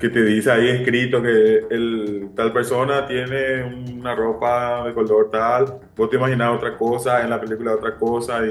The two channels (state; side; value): identical; both; correlation 1.00